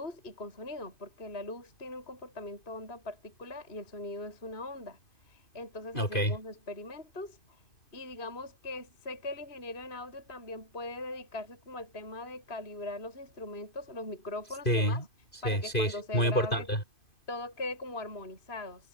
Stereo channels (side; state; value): right; late; 2.5 ms